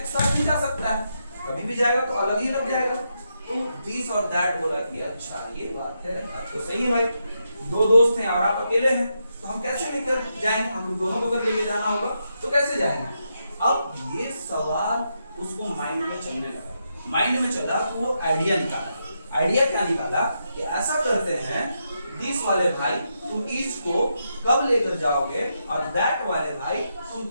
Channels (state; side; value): inverted; both; correlation -0.83